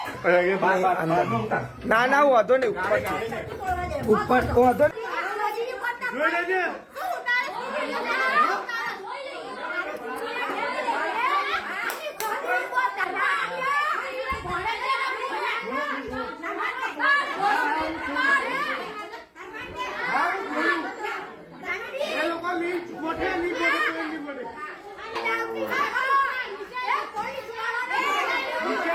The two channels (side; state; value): both; identical; correlation 1.00